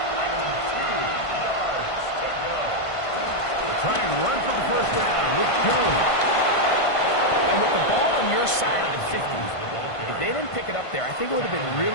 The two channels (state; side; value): late; right; 1.5 ms